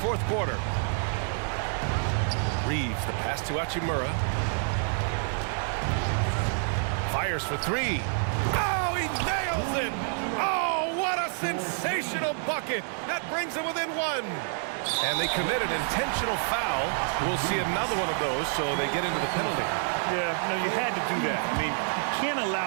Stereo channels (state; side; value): silent; left; 58 dB below the other